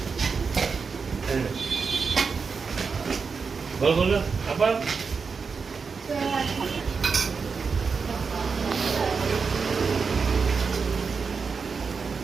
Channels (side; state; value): left; quieter; 5.2 dB